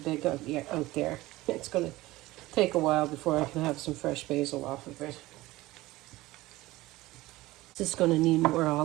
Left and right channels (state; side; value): quieter; left; 18.5 dB